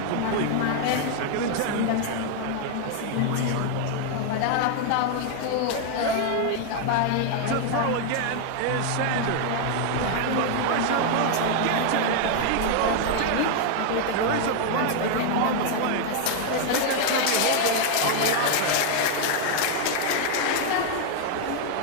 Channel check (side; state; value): both; different; correlation 0.00